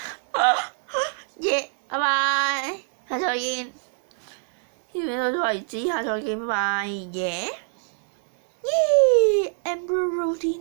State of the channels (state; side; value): silent; left; digital silence